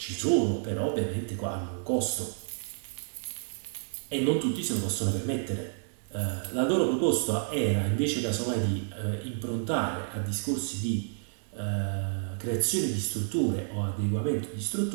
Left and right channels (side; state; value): left; silent; 58 dB below the other